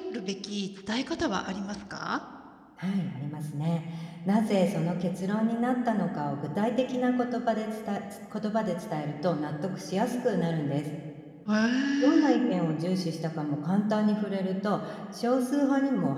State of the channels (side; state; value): both; identical; correlation 1.00